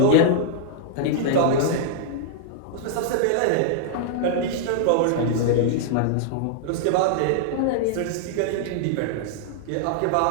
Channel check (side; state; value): both; different; correlation -0.01